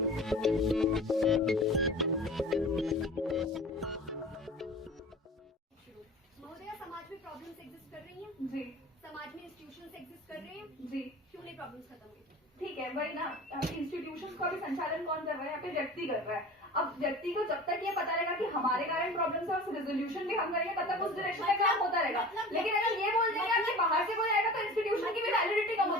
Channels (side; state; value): both; normal; correlation 0.38